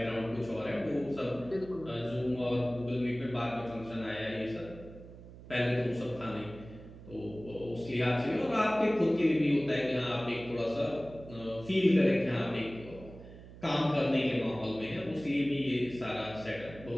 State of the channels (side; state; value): right; noise; hum, 17 dB below the sound